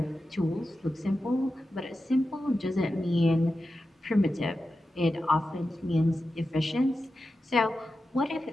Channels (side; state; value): both; normal; correlation 0.91